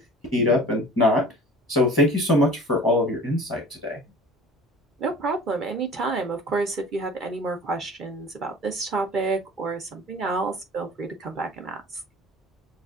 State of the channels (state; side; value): normal; both; correlation 0.43